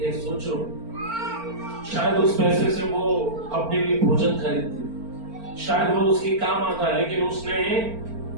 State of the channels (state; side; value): late; left; 4.4 ms